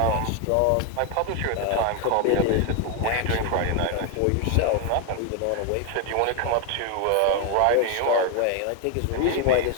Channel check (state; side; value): different; both; correlation 0.01